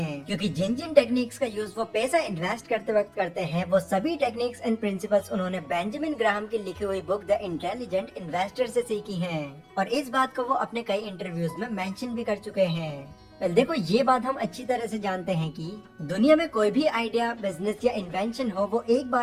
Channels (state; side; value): identical; both; correlation 1.00